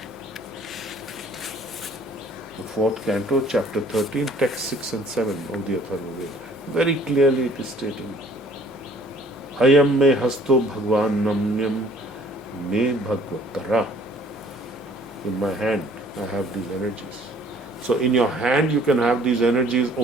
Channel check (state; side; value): normal; both; correlation 0.55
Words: The 4th canto, chapter 13, text 6 and 7 of the Atharva Ved. Very clearly it is stating, Ayam me hasto bhagwan namyam me bhagvatara. In my hand, I have these energies. So in your hand, you can have these energies